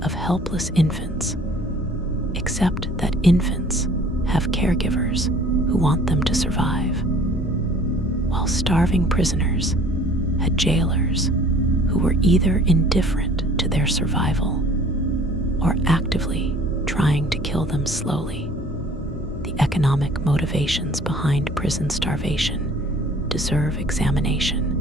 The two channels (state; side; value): normal; both; correlation 0.52